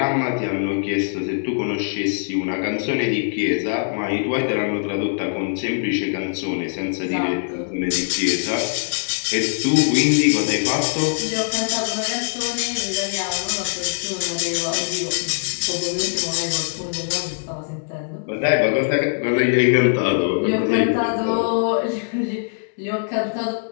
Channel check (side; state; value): right; silent; 64 dB below the other